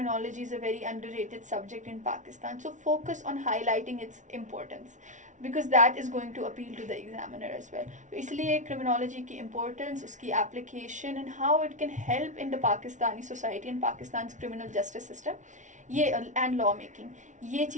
is a very underrated subject in Pakistan. So focus on highlighting its importance, because that is going to appeal to the examiner as well. तो इसलिए criminology की importance, उसकी application and how it can help in the Pakistani society and Pakistan's criminal justice system, ये and law making, ये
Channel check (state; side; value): late; left; 0.36 ms